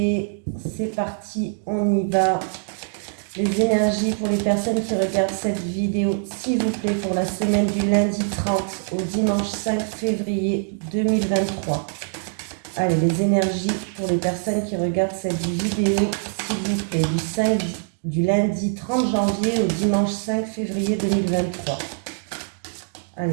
C'est parti, on y va. Les énergies pour les personnes qui regardent cette vidéo, s'il vous plaît, pour la semaine du lundi 30 au dimanche 5 février 2023. Allez, les énergies pour les personnes qui regardent cette vidéo, s'il vous plaît, du lundi 30 janvier au dimanche 5 février 2023.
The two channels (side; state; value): left; silent; digital silence